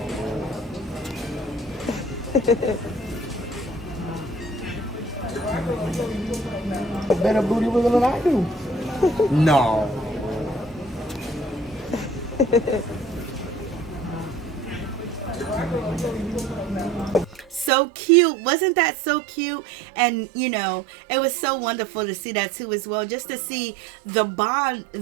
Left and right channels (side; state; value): left; drops out; at 17.7 s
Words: Better booty wiggle than I do. No. So cute. Wasn't that so cute? And you know, it was so wonderful to see that too as well, just to see the bond